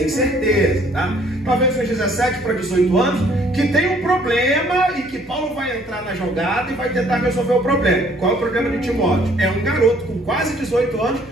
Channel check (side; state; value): right; noise; hum, 29 dB below the sound